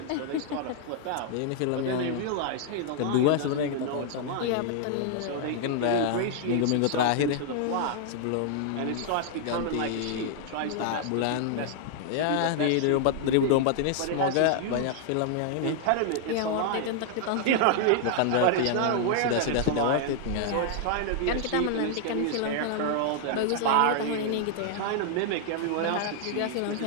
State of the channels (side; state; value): both; different; correlation 0.00